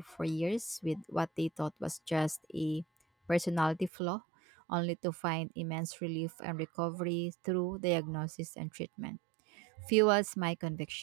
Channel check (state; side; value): drops out; left; at 3.9 s